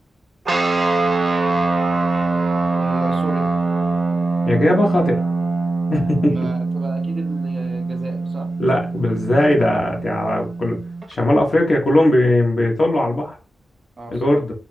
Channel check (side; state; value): both; normal; correlation 0.91